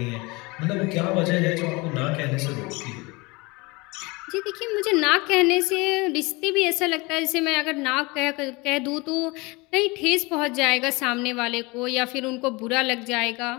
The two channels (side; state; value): right; quieter; 25.1 dB